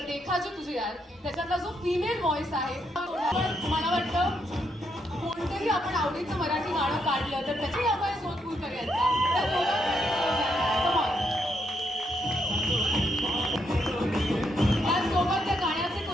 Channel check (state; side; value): normal; both; correlation 0.78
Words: देखा जो तुझे यार, त्याच्यातला जो फिमेल व्हॉइस आहे, मला वाटतं कोणतंही आपण आवडीचं मराठी गाणं काढलं तर त्याची आपण सोदपूर करायचा. त्याचसोबत त्या गाण्याचे